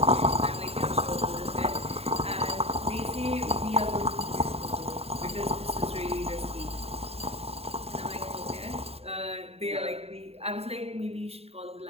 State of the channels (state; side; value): late; left; 0.29 ms